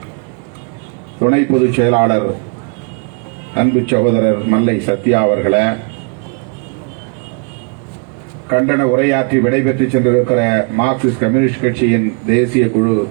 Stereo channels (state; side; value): quieter; left; 35.5 dB